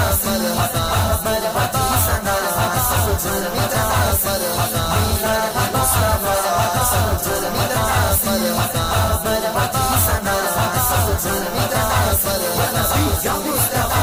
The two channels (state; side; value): identical; both; correlation 1.00